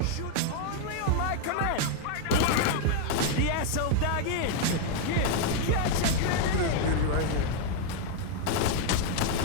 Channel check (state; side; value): different; both; correlation 0.00